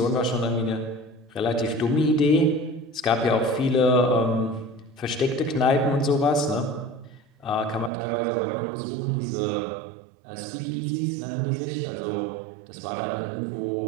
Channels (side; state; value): left; drops out; at 7.9 s